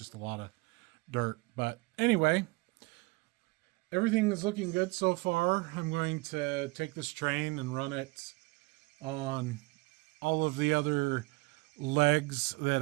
a lot of dirt. But anyway, everything is looking good so far. I'm going to take this train and run it on all of the other legs that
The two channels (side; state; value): left; quieter; 24.6 dB